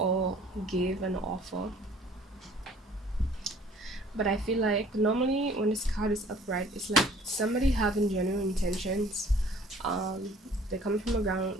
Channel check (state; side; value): normal; both; correlation 0.54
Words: give an offer. But I feel like normally when this card is upright, it's like somebody having genuine intentions. Um, they're coming from